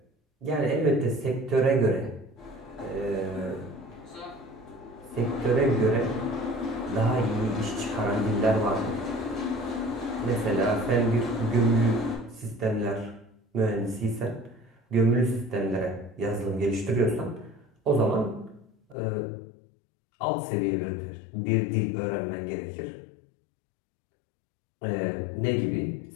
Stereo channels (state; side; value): drops out; right; at 18.9 s